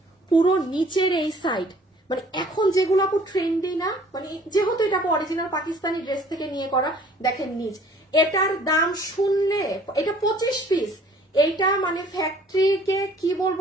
পুরো নিচের এই সাইড, মানে এখন যেগুলো আপু ট্রেন্ডি না, মানে যেহেতু এটা অরিজিনাল পাকিস্তানি ড্রেস থেকে নিয়ে করা। দেখেন নিচ, এটার দাম শুনলে, এটা 25 পিস, এইটা মানে ফ্যাক্টরিকে কি বলবো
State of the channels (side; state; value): both; normal; correlation 0.55